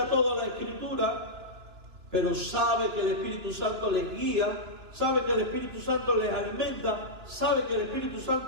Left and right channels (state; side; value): late; left; 2.9 ms